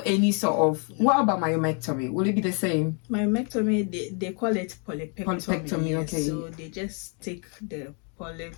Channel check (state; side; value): quieter; right; 38.7 dB